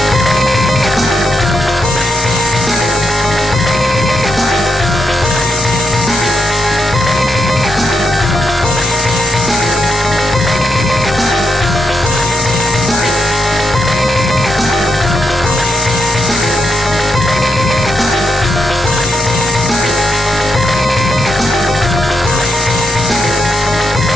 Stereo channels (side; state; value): both; normal; correlation 0.82